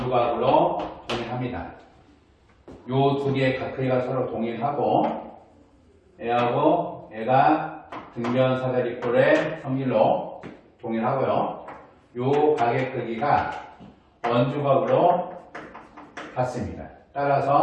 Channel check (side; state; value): both; identical; correlation 1.00